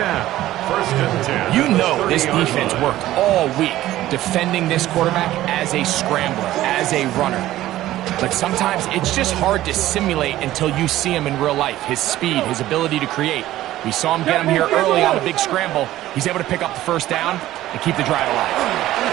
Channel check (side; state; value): left; quieter; 14.8 dB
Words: First and 10. You know this defense worked all week defending this quarterback as a scrambler, as a runner. But sometimes it's just hard to simulate until you see him in real life. His speed, his ability to create. We saw him get him here early on a big scramble. He's able to pick up the first down and keep the drive alive.